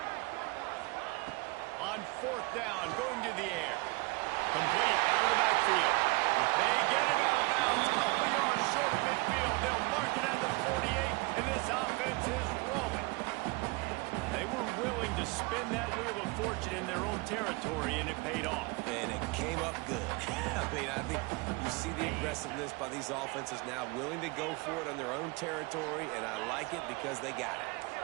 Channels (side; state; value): left; quieter; 26.1 dB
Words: On 4th down, going to the air. Complete out of the backfield. They get him out of bounds. Couple yards short of midfield. They'll mark it at the 48, and this offense is rolling. They were willing to spin that wheel of fortune in their own territory, and it paid off. And it came up good. I mean, I think you see the aggressiveness by these offenses now, willing to go for it on their own territory, and I like it because they got it.